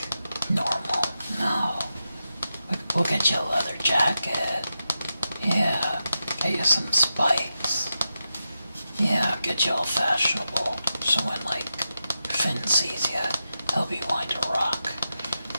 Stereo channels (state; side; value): inverted; both; correlation -0.89